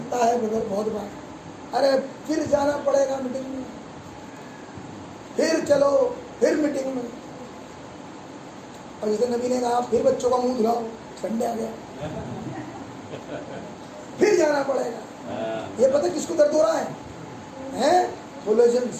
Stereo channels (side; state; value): both; identical; correlation 1.00